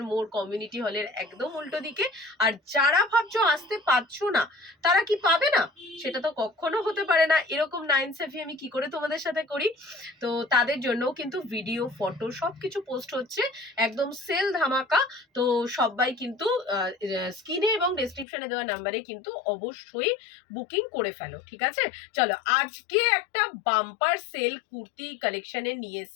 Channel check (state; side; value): drops out; right; at 18.2 s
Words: মোড় কমিউনিটি হলের একদম উল্টো দিকে। আর যারা ভাবছো আসতে পারছো না, তারা কি পাবে না? সেটা তো কখনো হতে পারে না। এরকম নাইন সেফি আমি কি করে তোমাদের সাথে করি? তো তাদের জন্য কিন্তু ভিডিও, ফটো সবকিছু পোস্ট হচ্ছে, একদম সেল ধামাকা। তো সবাই কিন্তু স্ক্রিনে এবং ডেসক্রিপশনে দেওয়া নাম্বারে কিন্তু অবশ্যই বুকিং করে ফেলো, ঠিক আছে? চলো, আজকে একটা বাম্পার সেল কুর্তি কালেকশনে নিয়ে